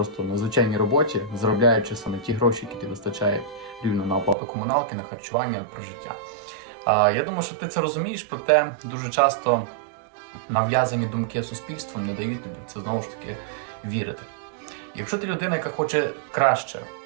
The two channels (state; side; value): drops out; left; at 4.4 s